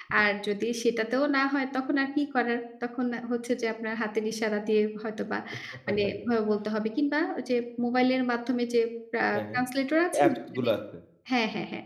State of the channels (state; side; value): identical; both; correlation 1.00